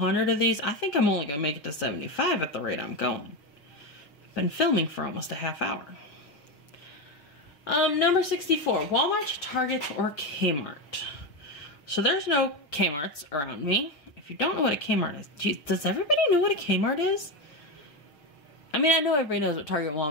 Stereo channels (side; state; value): right; late; 6.8 ms